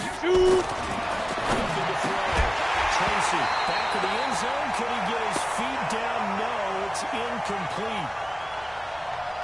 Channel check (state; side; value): identical; both; correlation 1.00